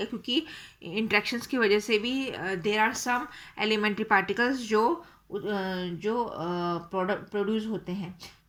क्योंकि इंटरेक्शंस की वजह से भी there are some elementary particles जो प्रोड्यूस होते हैं।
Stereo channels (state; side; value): identical; both; correlation 1.00